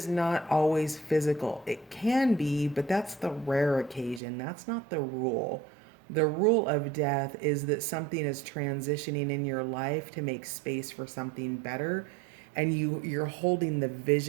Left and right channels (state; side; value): drops out; left; at 4.2 s